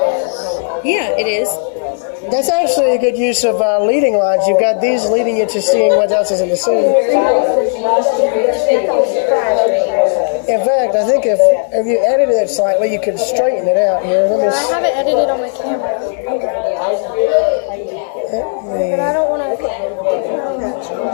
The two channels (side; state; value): right; silent; digital silence